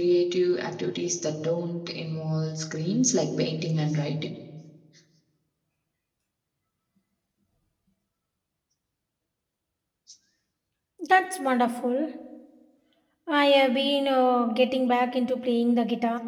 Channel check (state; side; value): identical; both; correlation 1.00